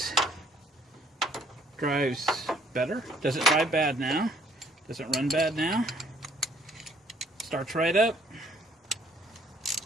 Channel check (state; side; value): normal; both; correlation 0.63